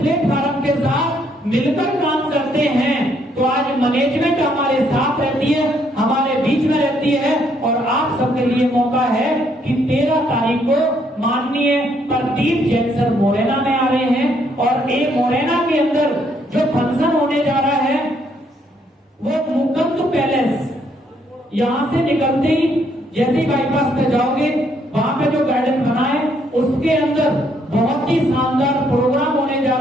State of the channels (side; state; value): both; normal; correlation 0.70